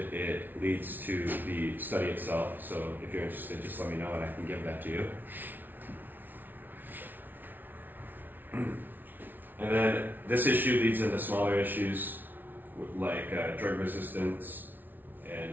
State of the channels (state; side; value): late; left; 0.088 ms